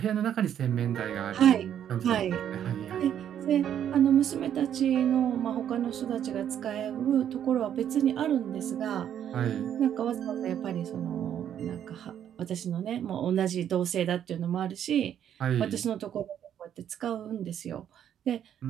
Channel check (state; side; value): quieter; left; 9.8 dB